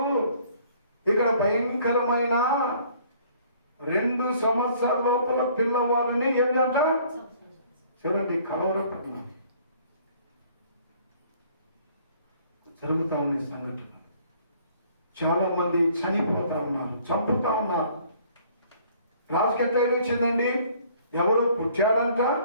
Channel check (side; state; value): both; inverted; correlation -0.58